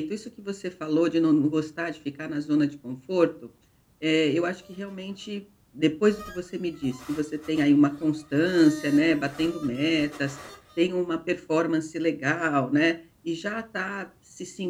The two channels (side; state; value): both; identical; correlation 1.00